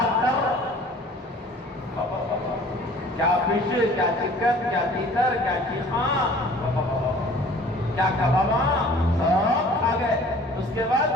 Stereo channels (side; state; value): both; normal; correlation 0.49